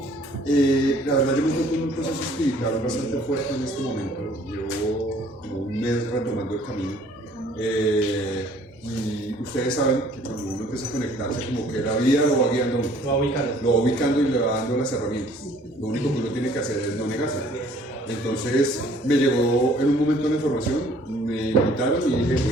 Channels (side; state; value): both; normal; correlation 0.57